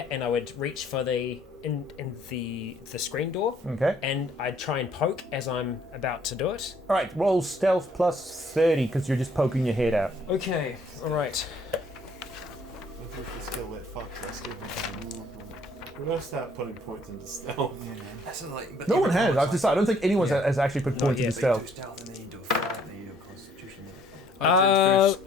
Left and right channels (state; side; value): normal; both; correlation 0.62